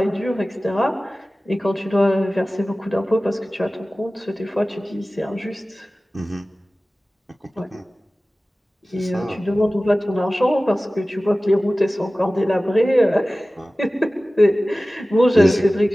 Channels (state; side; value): normal; both; correlation 0.97